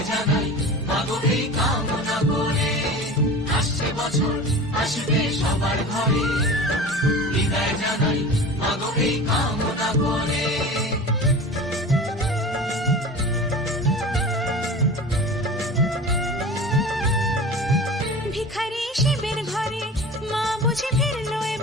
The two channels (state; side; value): normal; both; correlation 0.35